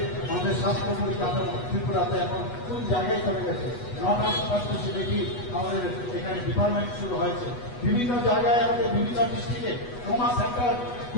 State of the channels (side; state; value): right; late; 8.2 ms